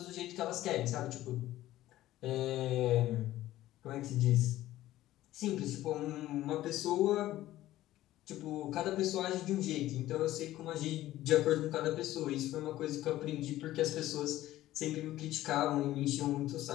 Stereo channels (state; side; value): quieter; right; 14.9 dB